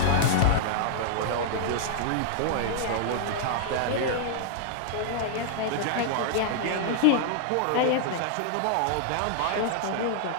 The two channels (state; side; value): different; both; correlation -0.01